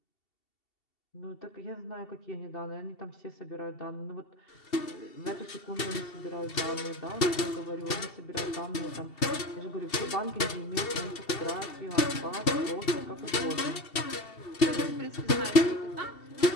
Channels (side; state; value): right; late; 2.7 ms